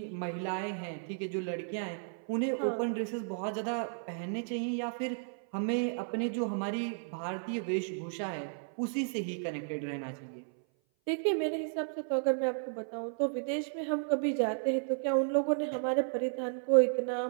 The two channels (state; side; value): silent; left; 55 dB below the other